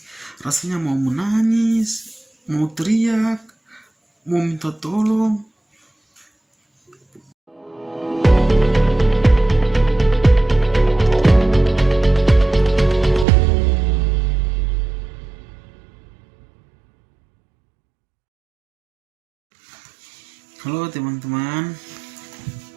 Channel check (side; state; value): left; drops out; at 13.2 s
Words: Rasanya mau menangis, mau teriak, mau minta tolong. Halo teman-teman,